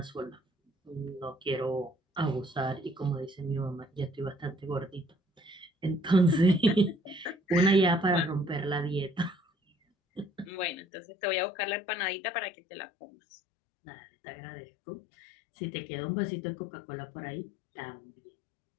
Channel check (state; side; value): drops out; right; at 10.8 s